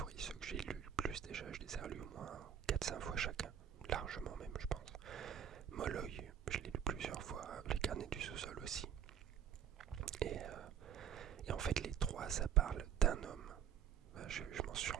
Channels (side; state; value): left; quieter; 8.8 dB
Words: ceux que j'ai lus le plus déjà. Je les ai relus au moins 4-5 fois chacun, largement même, je pense. Molloy, je l'ai lu plusieurs fois, Les carnets du sous-sol aussi. Et en fait, les 3, ça parle d'un homme. Je m'en suis